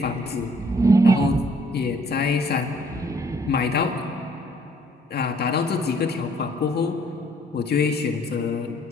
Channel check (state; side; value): normal; both; correlation 0.62